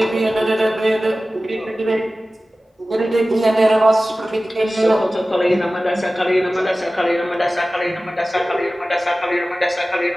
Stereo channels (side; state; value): both; normal; correlation 0.96